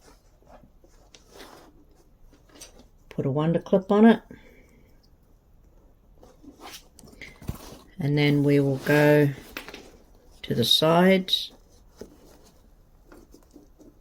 put a wonder clip on it, and then we will go to the sides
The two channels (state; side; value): identical; both; correlation 1.00